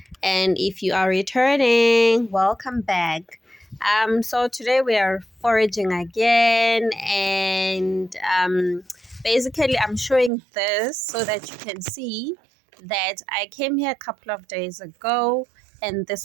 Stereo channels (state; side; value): drops out; left; at 10.3 s